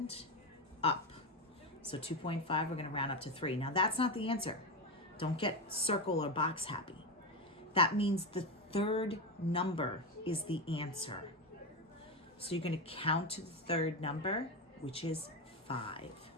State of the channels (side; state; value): both; normal; correlation 0.14